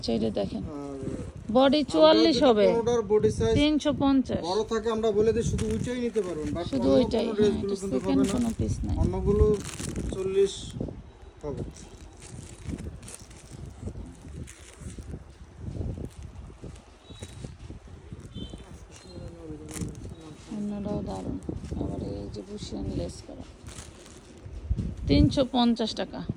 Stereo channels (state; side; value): identical; both; correlation 1.00